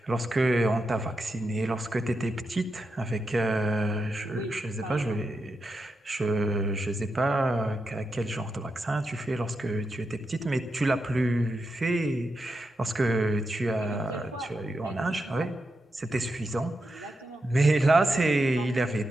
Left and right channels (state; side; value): normal; both; correlation 0.87